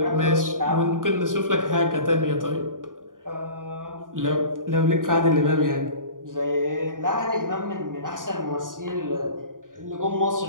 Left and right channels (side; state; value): left; late; 0.89 ms